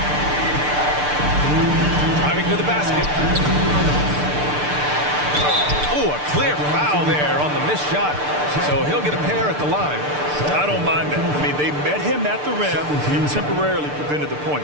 Driving to the basket. Oh, a clear foul there on the missed shot. So he'll get a pair at the line. I don't mind that. I mean, they met him at the rim and temporarily prevented the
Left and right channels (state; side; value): late; left; 6.7 ms